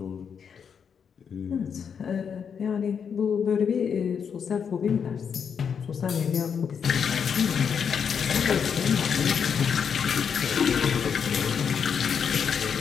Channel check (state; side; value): quieter; right; 7.0 dB